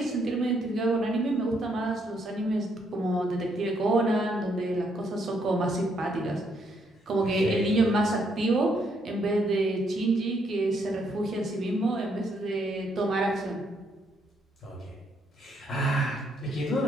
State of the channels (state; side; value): normal; both; correlation 0.73